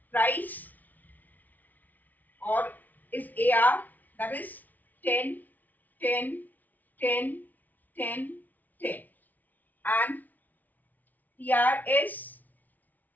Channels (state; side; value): late; right; 0.080 ms